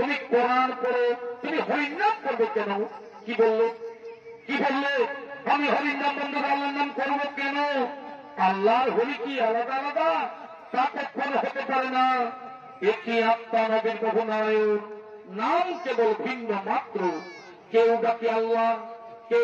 কোরআন করো, তুমি হরির নাম করবে কেন? কি বললো? কি বললে? আমি হরির নাম বন্ধ করে আল্লাহর নাম করবো কেন? আল্লাহর হরি কি আলাদা আলাদা? তা কখনো হতে পারে না। একই আত্মা নবীর বহুনায়ক, নাম কেবল ভিন্ন মাত্র। কেউ ডাকে আল্লাহ,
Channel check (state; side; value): identical; both; correlation 1.00